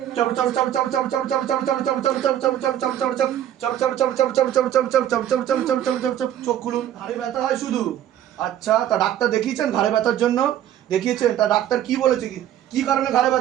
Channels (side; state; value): left; quieter; 11.3 dB